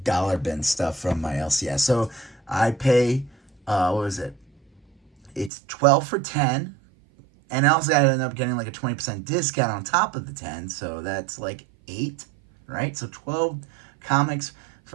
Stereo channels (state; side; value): drops out; left; at 5.5 s